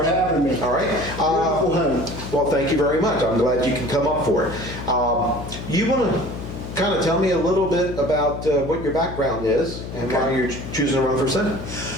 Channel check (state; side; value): noise; left; hum, 9 dB below the sound